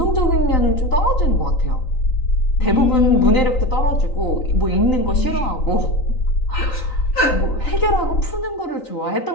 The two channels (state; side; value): late; right; 3.9 ms